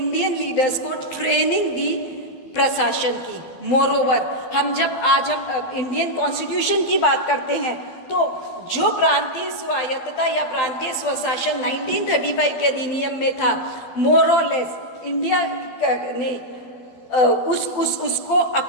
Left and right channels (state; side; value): late; right; 12 ms